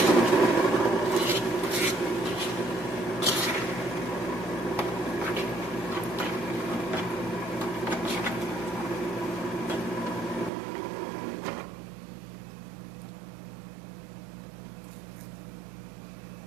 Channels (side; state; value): left; drops out; at 10.5 s